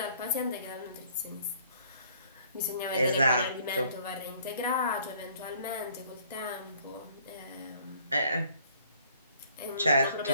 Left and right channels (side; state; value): both; inverted; correlation -0.60